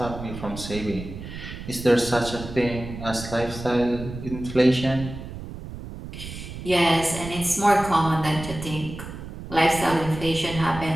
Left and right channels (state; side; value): noise; right; rumble, 10 dB below the sound